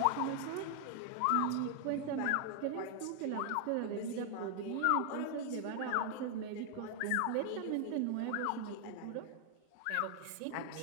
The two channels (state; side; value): different; both; correlation 0.00